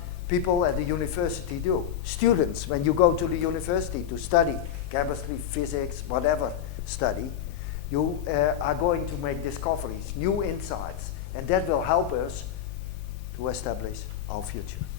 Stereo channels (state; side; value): quieter; right; 9.6 dB